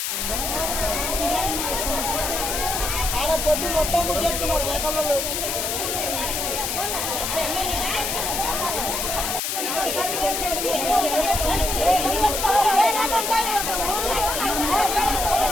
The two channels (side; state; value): left; noise; hiss, 1 dB below the sound